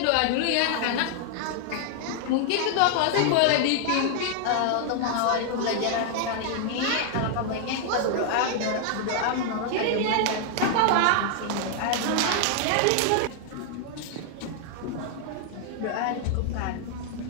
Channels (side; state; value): both; different; correlation 0.00